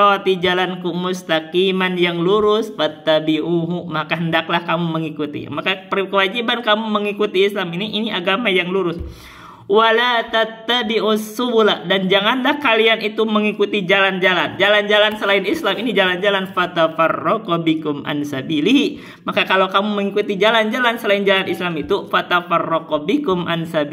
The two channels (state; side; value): identical; both; correlation 1.00